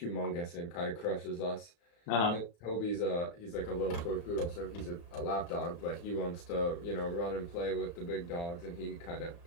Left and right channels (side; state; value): right; late; 35 ms